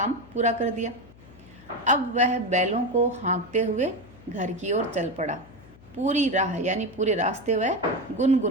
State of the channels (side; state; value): left; noise; hum, 23 dB below the sound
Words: पूरा कर दिया। अब वह बैलों को हाँकते हुए घर की ओर चल पड़ा। पूरी राह यानी पूरे रास्ते वह